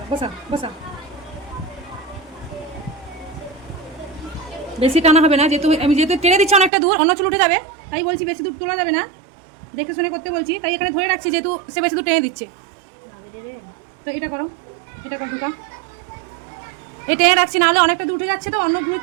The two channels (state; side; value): drops out; left; at 6.7 s